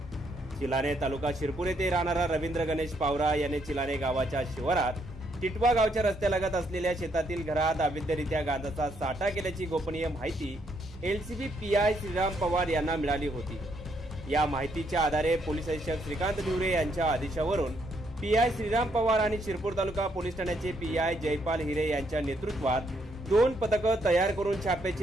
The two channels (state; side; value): normal; both; correlation 0.73